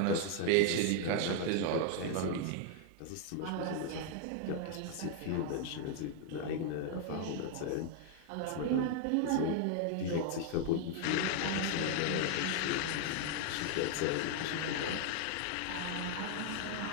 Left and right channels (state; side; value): different; both; correlation 0.00